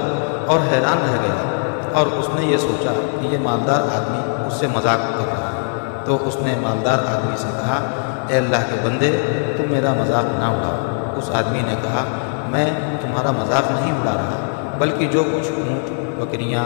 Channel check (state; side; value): silent; right; 60 dB below the other